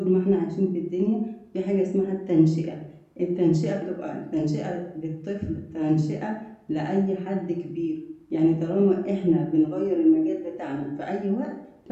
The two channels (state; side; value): identical; both; correlation 1.00